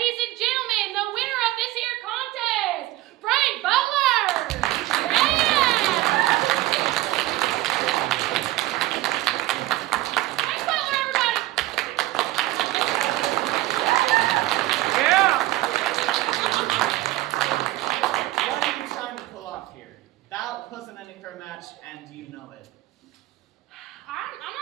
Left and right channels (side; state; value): left; quieter; 17.0 dB